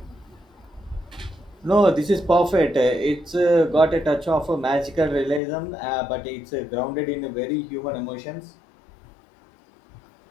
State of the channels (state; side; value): drops out; right; at 5.4 s